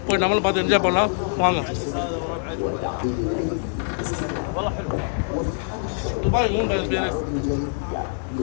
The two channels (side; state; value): right; silent; 63 dB below the other